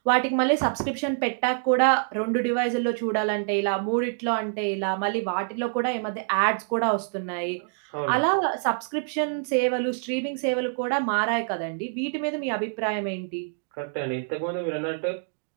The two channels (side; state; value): left; silent; digital silence